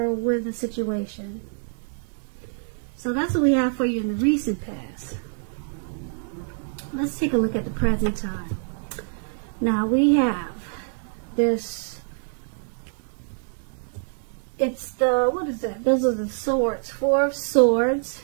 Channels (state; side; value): silent; left; 61 dB below the other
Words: with a situation. So that's what we have for you in the recent past. Let's take a look at the present time. Now we have this, it's the, what is that? Those are the swords, 4 of swords,